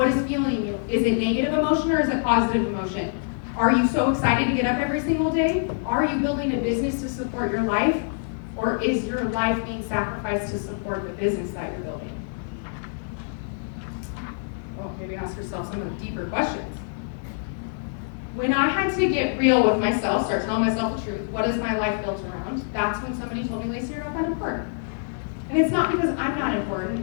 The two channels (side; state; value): right; silent; 60 dB below the other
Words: is fueling you? Is it negative emotion or is it positive emotion? Are you so excited to get up every single day? Are you building a business to support your life? Or is your life being sacrificed to support the business that you're building? Well, maybe ask yourself some of the deeper questions. When I had to get real with myself, start telling myself the truth, what is my life built around? That's when somebody told me, Lacey, you're not that important. And it's not because I'm not important,